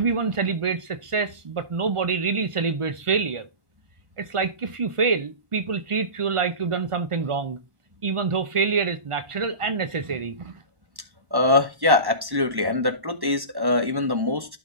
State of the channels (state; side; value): late; left; 1.1 ms